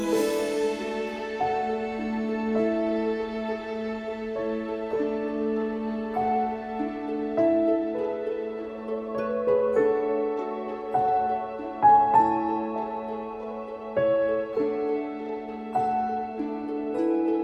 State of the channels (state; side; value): identical; both; correlation 1.00